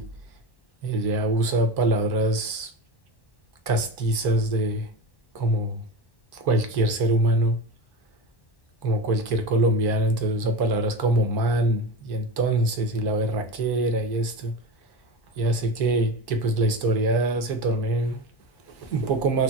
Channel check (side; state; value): right; late; 1.1 ms